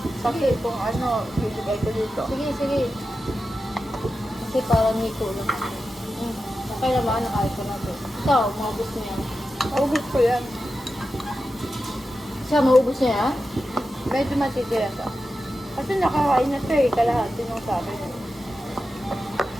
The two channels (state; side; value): normal; both; correlation 0.91